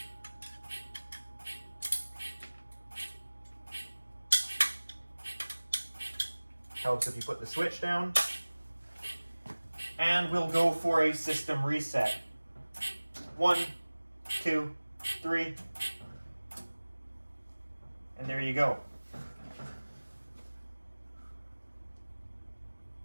Helps if you put the switch down. And we'll go for a system reset. 1, 2, 3. And there you go.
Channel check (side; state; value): both; inverted; correlation -1.00